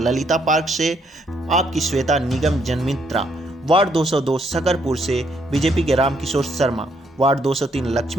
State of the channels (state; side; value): normal; both; correlation 0.72